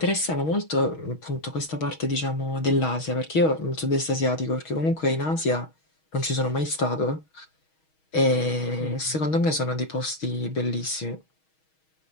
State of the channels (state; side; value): late; right; 6.3 ms